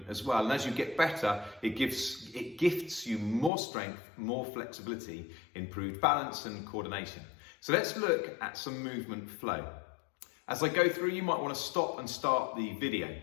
as well. And as you get better, it gifts you more strength, more flexibility, improved balance and coordination. So let's look at some movement flow. As I go through, you might want to stop and start the video.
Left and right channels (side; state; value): right; drops out; at 3.5 s